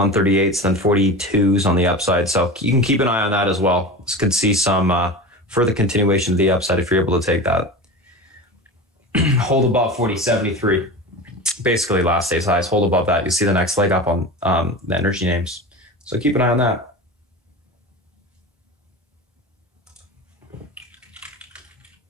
then 42s on the upside. So you can keep an eye on that as well. This could see some further continuation to the upside if you're able to take that. Hold above 40.73. Basically last day's highs. Hold above that. You see the next leg up on the energy names. So keep an eye on that.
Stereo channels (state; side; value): normal; both; correlation 0.30